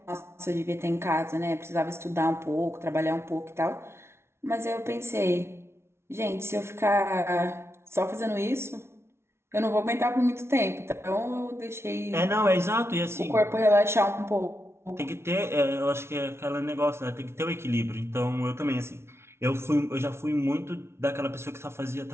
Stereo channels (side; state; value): left; late; 0.12 ms